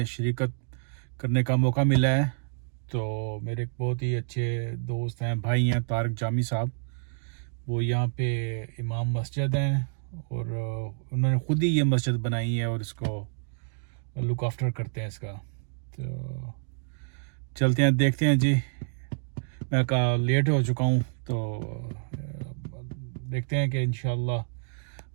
شرکت کرنے کا موقع ملا ہے. تو میرے ایک بہت ہی اچھے دوست ہیں، بھائی ہیں، طارق جامی صاحب. وہ یہاں پہ امام مسجد ہیں اور انہوں نے خود ہی یہ مسجد بنائی ہے اور اس کو لک آفٹر کرتے ہیں اس کا. تو چلتے ہیں، دیکھتے ہیں. جی میں لیٹ ہو چکا ہوں، تو دیکھتے ہیں کہ انشاءاللہ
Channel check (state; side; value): silent; left; digital silence